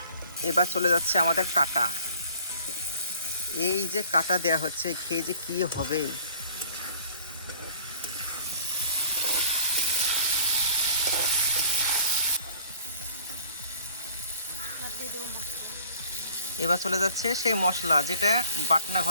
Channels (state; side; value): inverted; both; correlation -0.52